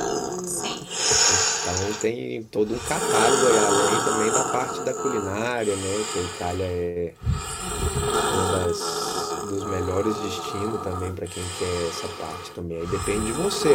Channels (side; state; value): both; identical; correlation 1.00